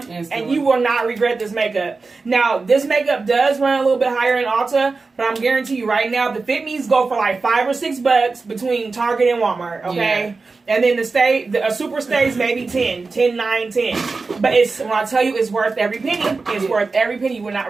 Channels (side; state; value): left; quieter; 4.1 dB